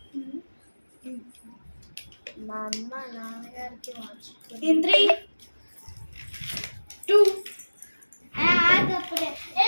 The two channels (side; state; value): both; inverted; correlation -1.00